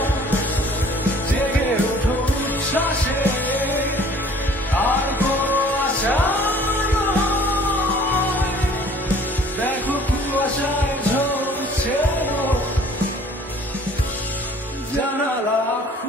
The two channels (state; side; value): normal; both; correlation 0.52